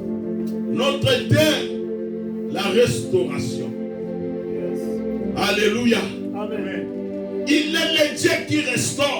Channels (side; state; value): both; identical; correlation 1.00